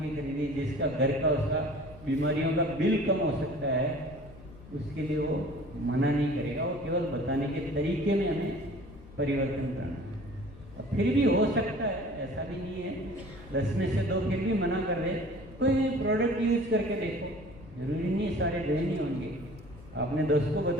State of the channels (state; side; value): noise; left; rumble, 19 dB below the sound